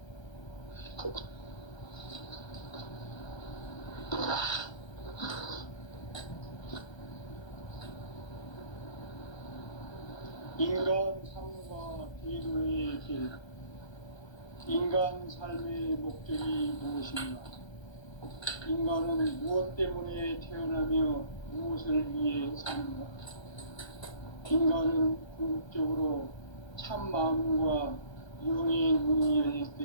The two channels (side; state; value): right; late; 1.3 ms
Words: 인간 삶과 대도의 길. 인간 삶의 목적이 무엇인가? 인간은 무엇 때문에 태어나며 무엇을 위해 사는가? 인간은 궁극적으로 참 마음과 영의 문이 열릴 때